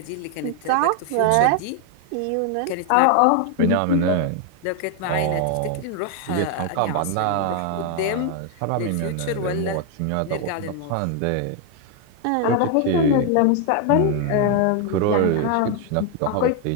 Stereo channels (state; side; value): different; both; correlation 0.01